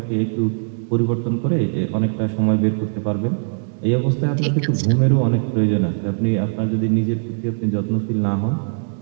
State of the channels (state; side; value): silent; left; 64 dB below the other